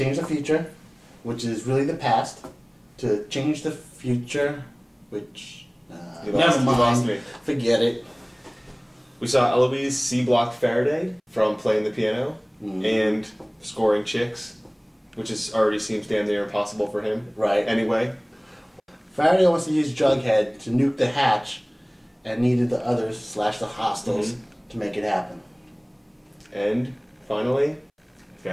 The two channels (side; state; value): both; identical; correlation 1.00